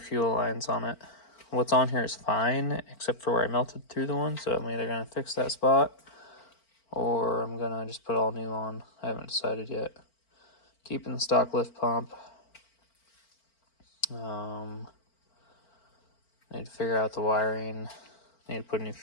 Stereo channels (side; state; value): right; late; 4.4 ms